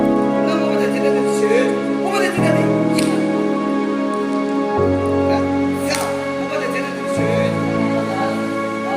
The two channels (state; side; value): identical; both; correlation 1.00